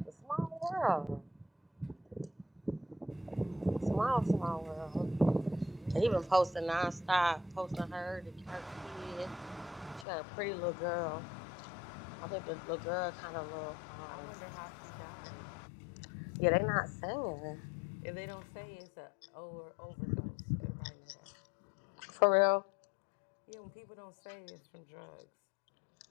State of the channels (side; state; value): right; drops out; at 10.1 s